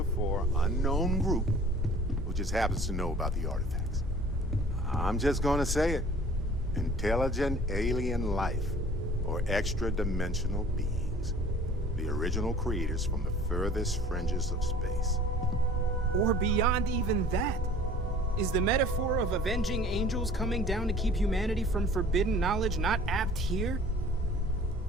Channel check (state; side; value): normal; both; correlation 0.49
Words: unknown group who just happens to know about the artifacts. I'm just gonna say it. Intelligent alien life, or extra-dimensional beings. The original creators from the furthest fringes of space. Or beyond even that. Is the metaphor of avenging angels coming down to keep humanity from forbidden knowledge not apt here?